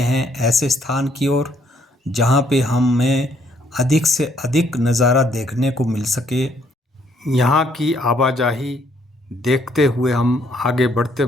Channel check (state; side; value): normal; both; correlation 0.67